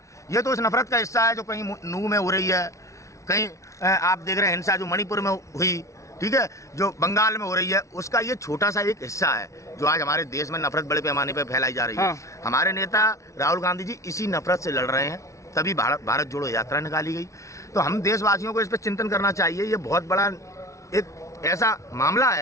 ये तो इस नफरत का हिस्सा है जो कहीं नू में हो रही है, कहीं आप देख रहे हैं हिंसा जो मणिपुर में हुई, ठीक है, जो बंगाल में हो रही है, उसका ये छोटा सा एक हिस्सा है जो आज हमारे देश में नफरत बड़े पैमाने पर फैलाई जा रही है। हमारे नेता राहुल गांधी जी इसी नफरत से लड़ रहे हैं, तभी भारत जोड़ो यात्रा निकाली गई। तो हम देशवासियों को इस पर चिंतन करना चाहिए। ये बहुत बड़ा एक ऐसा मामला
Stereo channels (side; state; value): right; late; 0.15 ms